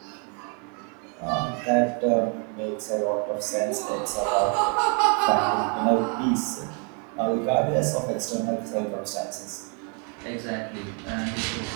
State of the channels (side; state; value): left; quieter; 37.8 dB